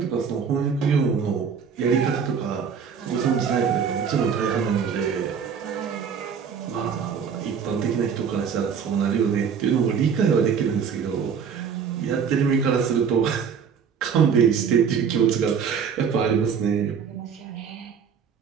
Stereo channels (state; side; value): quieter; left; 6.8 dB